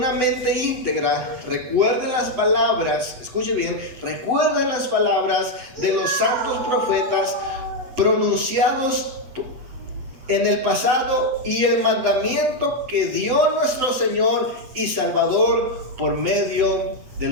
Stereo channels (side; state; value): left; late; 7.9 ms